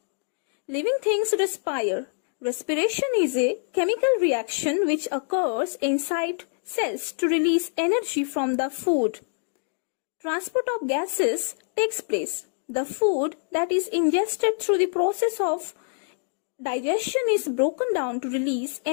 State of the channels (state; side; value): silent; right; digital silence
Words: Living things respire. Respiration is a chemical reaction which occurs inside cells to release energy from the food. Transport of gases takes place. The food that is ingested through the process of digestion is broken down to release